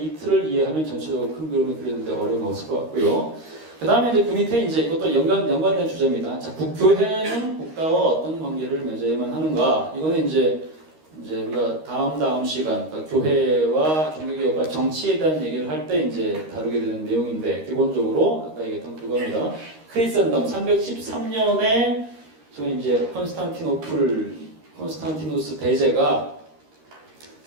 틀을 이해하면 전체적으로 큰 그림을 그리는데 어려움이 없을 것 같고요. 그 다음에 이제 그 밑에 이제 이것도 연관된 주제입니다. 자, 국교회는 국가와 어떤 관계를 맺어야만 하는가? 이거는 이제 우리가 다음 시간, 그러니까 교회와 종교개혁과 정치에 대한 얘기를 할 때 이제 다루게 되는 내용인데, 기본적으로 아까 얘기했던 그겁니다. 크리스천덤 313년에 저희 이제 콘스탄티누스 대제가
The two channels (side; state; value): left; late; 13 ms